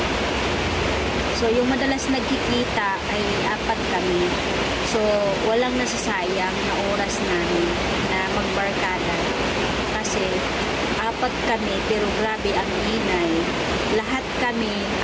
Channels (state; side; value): identical; both; correlation 1.00